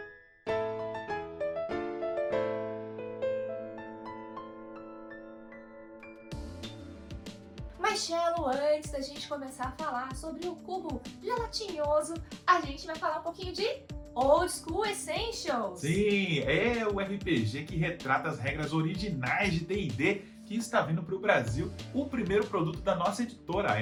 Mas, Cello, antes da gente começar a falar sobre o cubo gelatinoso, a gente vai falar um pouquinho de Old School Essentials. Sim, é o RPG que retrata as regras originais de D&D que está vindo para o Brasil. O primeiro produto da nossa editora, a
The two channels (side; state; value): both; identical; correlation 1.00